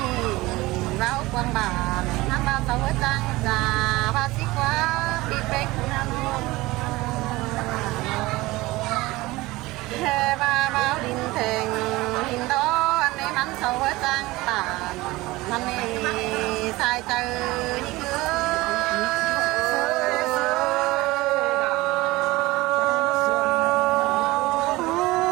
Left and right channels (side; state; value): left; quieter; 20.1 dB